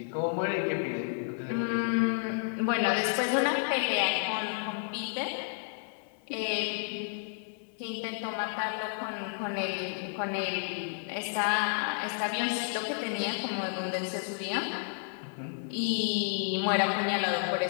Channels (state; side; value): silent; right; 57 dB below the other